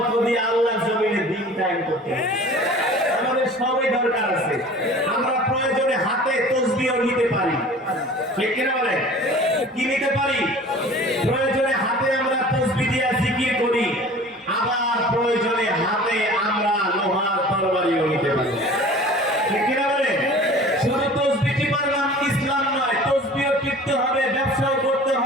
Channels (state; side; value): normal; both; correlation 0.43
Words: দিয়ে আল্লাহর জমিনে দিন কায়েম করতে হবে। আমাদের সবই দরকার আছে। আমরা প্রয়োজনে হাতে তাসবিহ নিতে পারি। ঠিক কিনা বলে? কি নিতে পারি? প্রয়োজনে হাতে আমরা তাসবিহ দিয়ে জিকির করি, আবার প্রয়োজনে হাতে আমরা লোহার তরবারিও নিতে পারি। ঠিক কিনা বলে? শুধু তাসবিহই পারলাম ইসলাম নয়, তাসবিহ টিকতে হবে, ব্যবসাও করতে